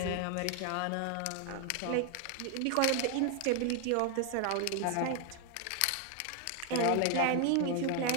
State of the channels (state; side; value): different; both; correlation 0.01